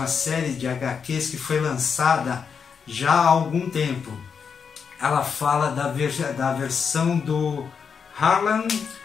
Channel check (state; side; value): quieter; right; 6.3 dB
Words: série de HQs que foi lançada já há algum tempo. Ela fala da versão do Harlan